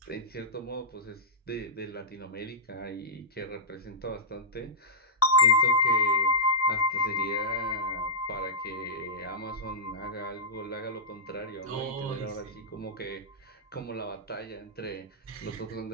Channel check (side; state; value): both; normal; correlation -0.15